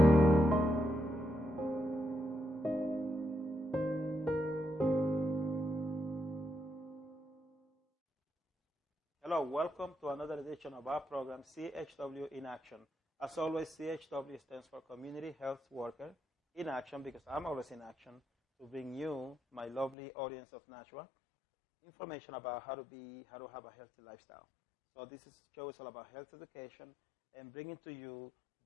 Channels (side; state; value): right; drops out; at 20.0 s